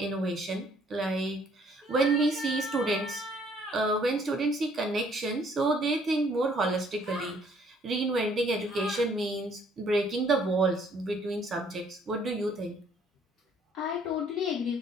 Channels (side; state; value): both; normal; correlation 0.62